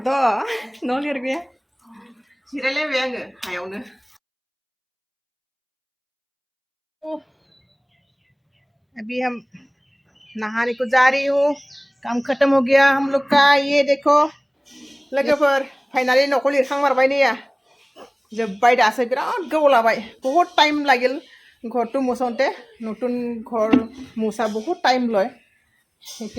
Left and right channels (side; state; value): both; identical; correlation 1.00